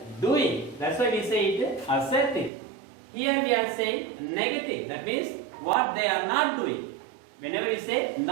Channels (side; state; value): left; drops out; at 2.5 s